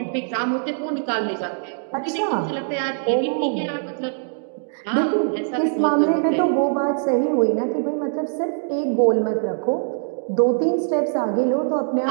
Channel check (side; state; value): left; silent; digital silence